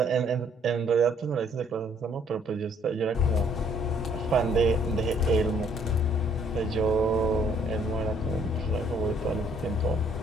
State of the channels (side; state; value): both; normal; correlation 0.64